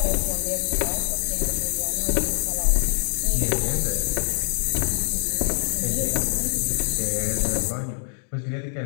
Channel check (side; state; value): right; silent; digital silence